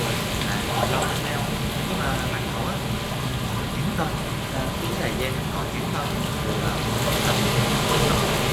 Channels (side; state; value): both; identical; correlation 1.00